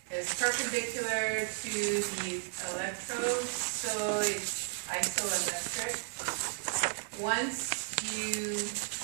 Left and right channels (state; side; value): silent; left; 55 dB below the other